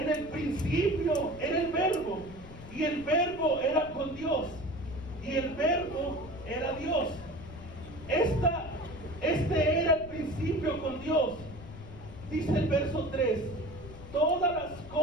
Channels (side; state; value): left; noise; rumble, 15 dB below the sound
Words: el principio era el Verbo, y el Verbo era con Dios, y el Verbo era Dios. Este era el principio con Dios. Dice el verso 3, todas las